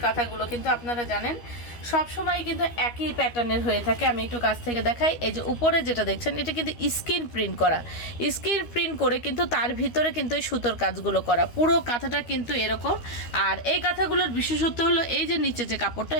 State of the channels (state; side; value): late; right; 13 ms